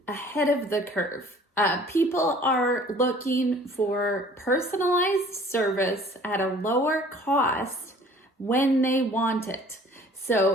ahead of the curve. People are looking for personalized service at a lower cost when they want it.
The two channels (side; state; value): both; normal; correlation 0.51